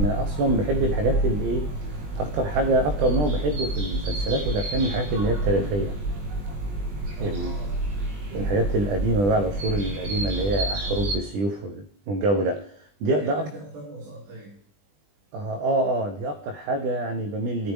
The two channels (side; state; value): left; late; 20 ms